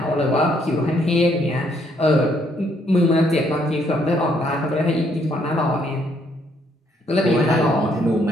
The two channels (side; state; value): both; normal; correlation 0.70